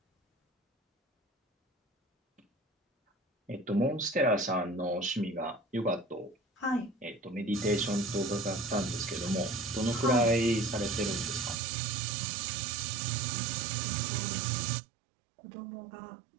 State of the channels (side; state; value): left; drops out; at 11.6 s